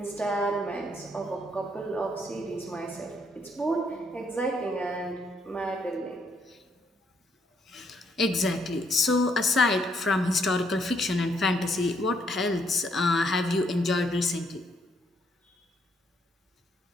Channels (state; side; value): normal; both; correlation 0.72